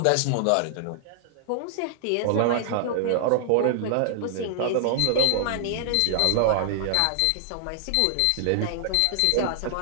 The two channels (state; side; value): different; both; correlation -0.01